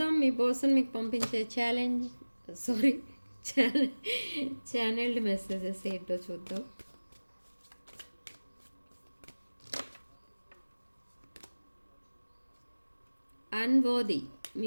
మీ పర్సన్ మీకు పంపించే ఛానల్డ్ మెసేజెస్ ఏంటో చూద్దాం. అన్వర్ది,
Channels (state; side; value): inverted; both; correlation -1.00